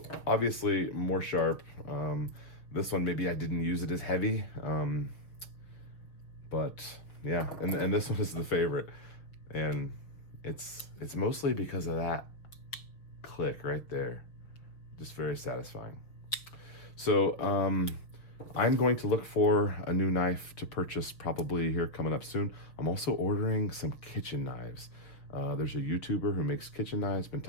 obviously more sharp. This one, maybe I didn't use it as heavy. But yeah, and this one is the favorite, and it's mostly because of that click right there. Just very satisfying. So I'm going to look for a new knife to purchase probably here coming up soon. I'm also ordering some kitchen knives. There's a YouTuber who makes kitchen knives, been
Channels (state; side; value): late; right; 6.3 ms